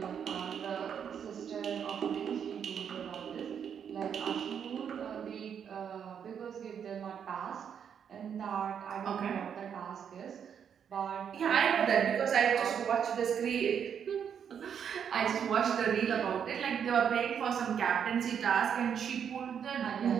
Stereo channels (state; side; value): quieter; left; 7.9 dB